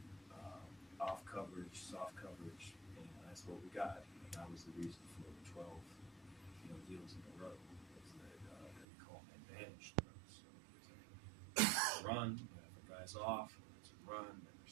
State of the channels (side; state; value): left; drops out; at 8.8 s